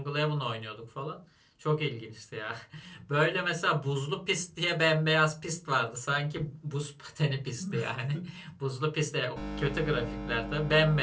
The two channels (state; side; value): identical; both; correlation 1.00